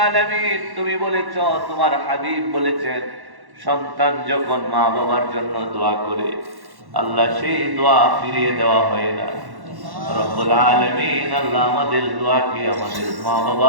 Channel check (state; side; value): late; left; 1.1 ms